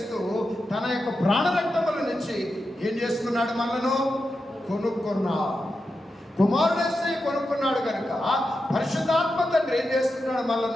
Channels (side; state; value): both; normal; correlation 0.89